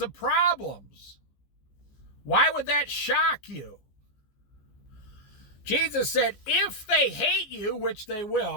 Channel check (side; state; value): right; late; 15 ms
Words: of problems? Why would that shock you? Jesus said, if they hate you, which they